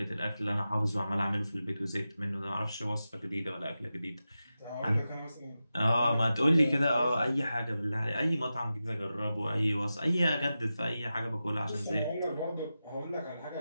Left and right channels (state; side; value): inverted; both; correlation -0.92